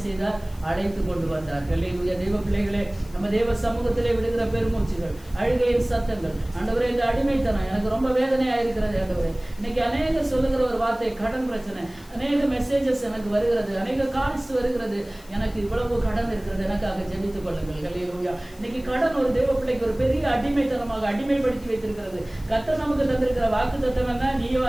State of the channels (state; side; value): noise; left; hiss, 24 dB below the sound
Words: செய்தார்? அழைத்து கொண்டு வந்தார். அல்லேலூயா. தெய்வ பிள்ளைகளே, நம்ம தேவ சமூகத்திலே விடுகிற பெருமூச்சுகள், அழுகையின் சத்தங்கள், ஆண்டவரே இந்த அடிமைத்தனம் எனக்கு ரொம்ப வேதனையா இருக்கிறது ஆண்டவரே. இன்னைக்கு அநேக சொல்லுகிற ஒரு வார்த்தை கடன் பிரச்சனை, அநேக மெசேஜஸ் எனக்கு வருகிறது, அநேக கால்ஸ் வருகிறது, எனக்கு இவ்வளவு கடன் இருக்கிறது, எனக்காக ஜெபித்துக் கொள்ளுங்கள். அல்லேலூயா. இன்னைக்கு கடன் ஒரு தேவ பிள்ளைக்கு ஒரு பெரிய அடிமைத்தனமாக அடிமைப்படுத்தி வைத்திருக்கிறது. கர்த்தர் நமக்கு தந்திருக்கிற வாக்கு தத்தம் என்ன? நீயோ